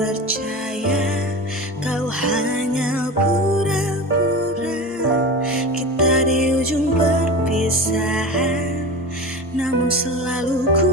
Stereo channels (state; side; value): normal; both; correlation 0.28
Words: kau hanya pura-pura. Kita di ujung perpisahan, namun selalu